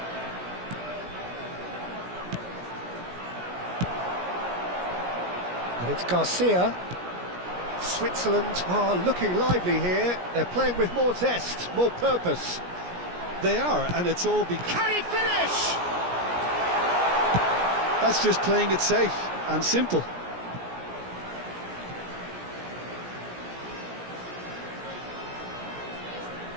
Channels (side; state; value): left; late; 17 ms